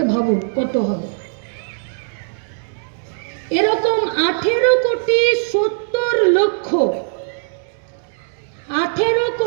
ভাবুন কত হবে। এরকম 18,70,00,000,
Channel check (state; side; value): silent; left; digital silence